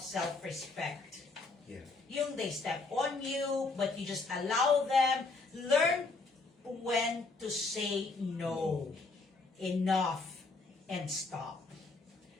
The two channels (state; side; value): quieter; right; 3.7 dB